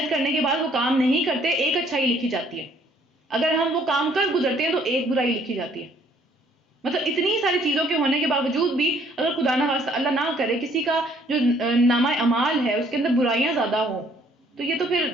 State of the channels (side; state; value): both; normal; correlation 0.62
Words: کرنے کے بعد وہ کام نہیں کرتے، ایک اچھائی لکھی جاتی ہے. اگر ہم وہ کام کر گزرتے ہیں تو ایک برائی لکھی جاتی ہے. مطلب اتنی ساری چیزوں کے ہونے کے باوجود بھی اگر خدا نہ خواستہ اللہ نہ کرے کسی کا جو نامہ اعمال ہے اس کے اندر برائیاں زیادہ ہوں، تو یہ تو پھر